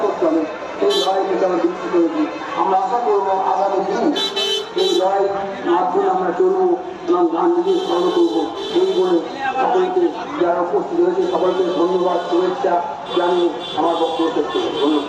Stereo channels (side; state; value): both; identical; correlation 1.00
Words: করতে হবে, সেই লড়াই থেকে আমরা বিক্রি করেছি। আমরা আশা করবো আগামী দিন এই লড়াই মাধ্যমে আমরা চলবো এবং গান্ধীকে স্মরণ করবো। এই বলে সকলকে যারা উপস্থিত হয়েছে সকলকে ধন্যবাদ, শুভেচ্ছা জানিয়ে আমার বক্তব্য শেষ করবো।